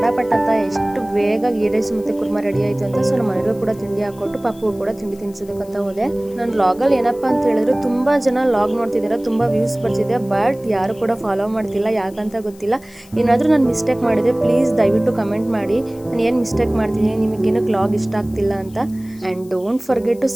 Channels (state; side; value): noise; left; hiss, 25 dB below the sound